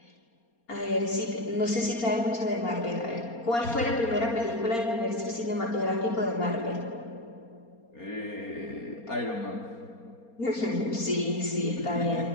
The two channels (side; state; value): right; late; 4.3 ms